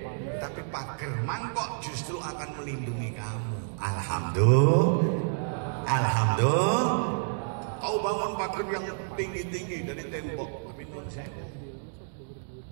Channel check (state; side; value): silent; left; digital silence